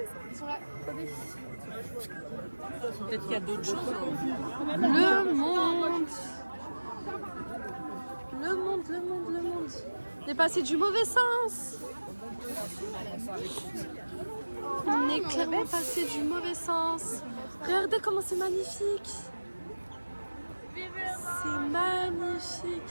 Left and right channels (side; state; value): both; inverted; correlation -1.00